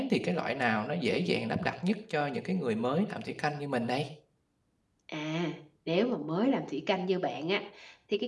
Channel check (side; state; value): both; identical; correlation 1.00